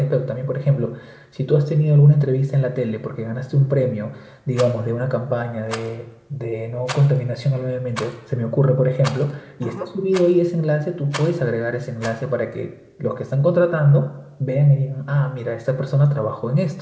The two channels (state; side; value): identical; both; correlation 1.00